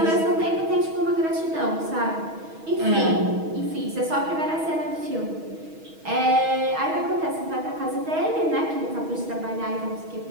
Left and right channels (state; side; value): late; left; 6.3 ms